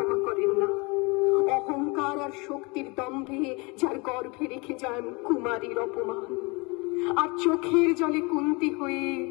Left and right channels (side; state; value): right; quieter; 28.1 dB